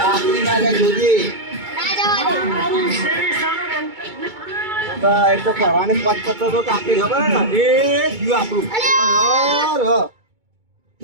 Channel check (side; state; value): left; late; 2.3 ms